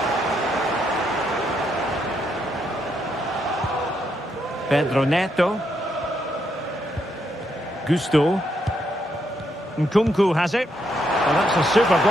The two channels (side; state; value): both; normal; correlation 0.78